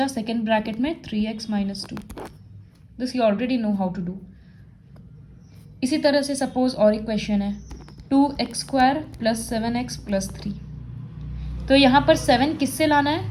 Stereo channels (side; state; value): both; identical; correlation 1.00